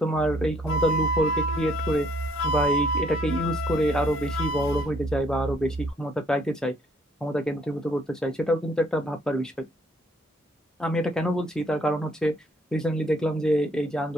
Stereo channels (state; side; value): normal; both; correlation 0.65